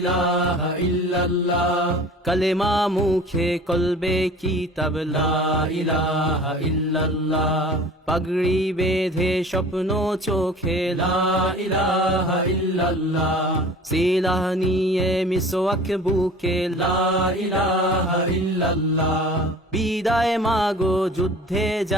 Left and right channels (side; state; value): both; normal; correlation 0.43